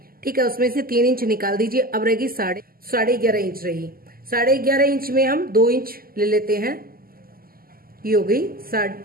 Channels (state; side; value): late; left; 0.42 ms